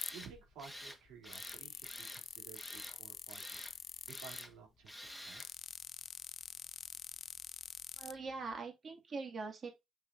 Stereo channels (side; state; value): both; normal; correlation 0.77